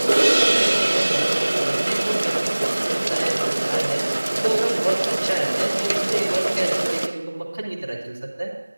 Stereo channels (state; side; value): inverted; both; correlation -1.00